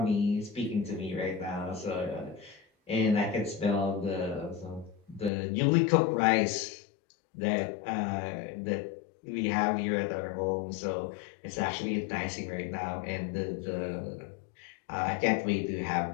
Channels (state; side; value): drops out; right; at 5.3 s